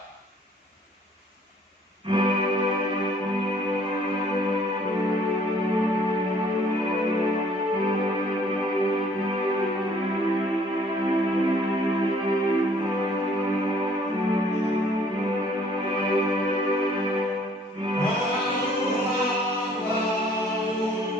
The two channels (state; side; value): normal; both; correlation 0.59